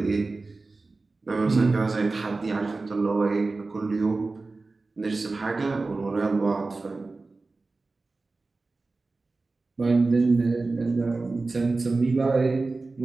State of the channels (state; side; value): quieter; left; 3.6 dB